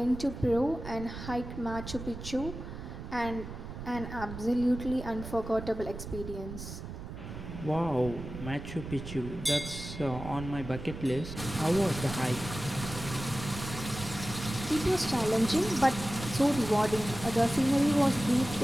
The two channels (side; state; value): right; noise; rumble, 9 dB below the sound